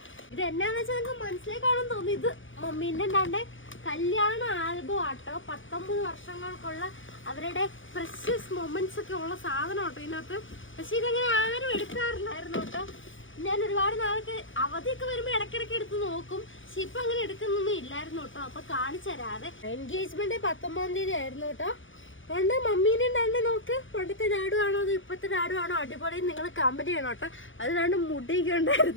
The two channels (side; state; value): right; late; 0.57 ms